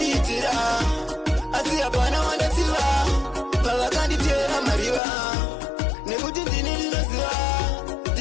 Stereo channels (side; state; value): right; drops out; at 5.0 s